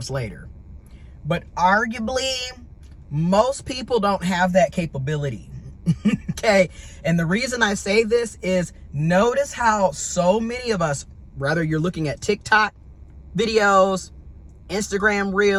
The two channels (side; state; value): both; identical; correlation 1.00